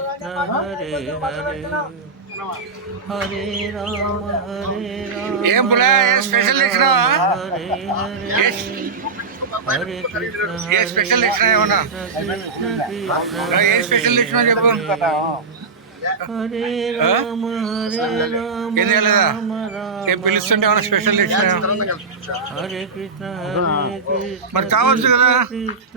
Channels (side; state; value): left; quieter; 4.5 dB